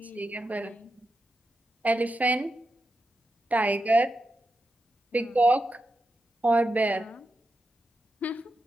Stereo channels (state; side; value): normal; both; correlation 0.88